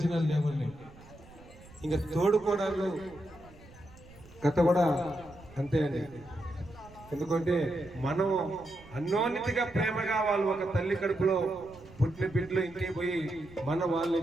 లేవండి. ఇంకా తోడుకోవడాలు కథ కూడా అంతే అండి. ఎందుకంటే మనం అన్యోన్యతగా ప్రేమగా వాళ్ళు ఒక తల్లి కడుపులో పుట్టిన బిడ్డలు ఇంటికి పోయి వాళ్ళని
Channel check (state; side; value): noise; right; rumble, 22 dB below the sound